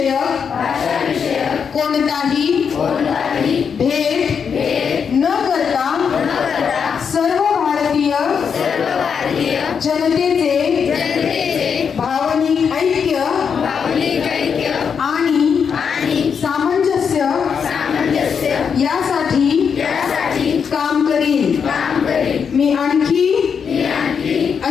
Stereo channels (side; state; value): right; quieter; 6.7 dB